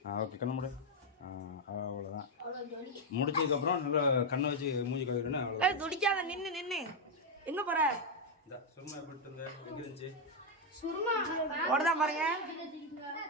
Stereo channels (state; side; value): normal; both; correlation 0.01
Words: ஓகே கண்ணு மூடு. அவ்வளோதான். முடிச்சதுக்கப்புறம் நல்லா கண்ணை வச்சு மூஞ்சி கழுவுறேன்னு அவ்வளோ. துடிக்காத நின்று நின்று எங்கே போகிற? இந்த சுருமா போட்டு இருந்த எங்கே இருந்துச்சு? சுருமா ஓடதான் பாருங்க.